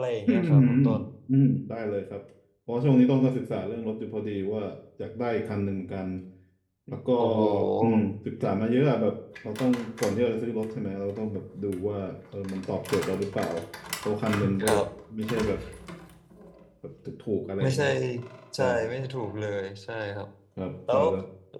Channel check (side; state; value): both; identical; correlation 1.00